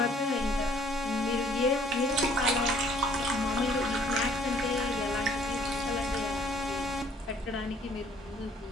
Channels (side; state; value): both; normal; correlation 0.59